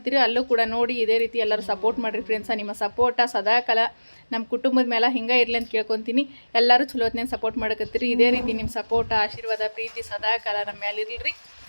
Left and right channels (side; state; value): both; inverted; correlation -1.00